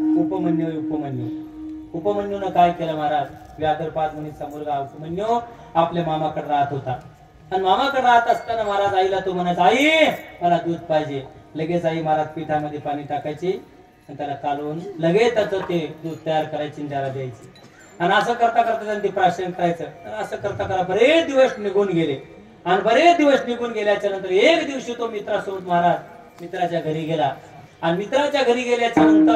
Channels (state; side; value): identical; both; correlation 1.00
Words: उपमन्यूनं काय केलं महाराज? व्याघ्रपाद मुनीचा मुलगा उपमन्यू आपल्या मामाकडे राहत होता आणि मामाकडे राहत असताना महाराज आईला तो म्हणायचा, आई मला दूध पाहिजे. लगेच आई महाराज पिठामध्ये पाणी टाकायची आणि त्याला कालवून लगेच त्याचं ते दूध तयार करायची आणि त्याला द्यायची. आणि असं करता करता त्यांनी प्राशन करायचं. असं करता करता बरेच दिवस निघून गेले आणि बरेच दिवस निघून गेल्याच्या नंतर एक दिवशी तो मित्रासोबत महाराज मित्राच्या घरी गेला आणि मित्राच्या घरी गेल्याच्या